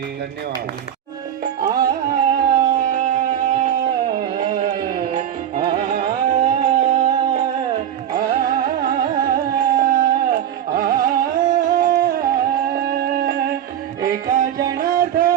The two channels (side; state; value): left; quieter; 10.1 dB